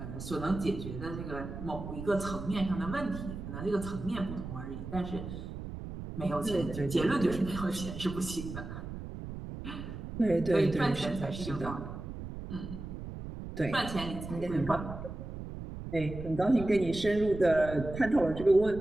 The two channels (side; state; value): right; noise; rumble, 9 dB below the sound